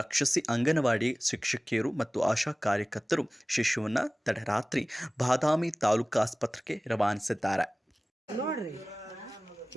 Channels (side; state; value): both; normal; correlation 0.98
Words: ರಕ್ಷಿಸಿ ಅಂಗನವಾಡಿ ಶಿಕ್ಷಕಿಯರು ಮತ್ತು ಆಶಾ ಕಾರ್ಯಕರ್ತರು ಶಿಶುವನ್ನ ತಡರಾತ್ರಿ ಬಾದಾಮಿ ತಾಲೂಕು ಆಸ್ಪತ್ರೆಗೆ ರವಾನಿಸಿದ್ದಾರೆ.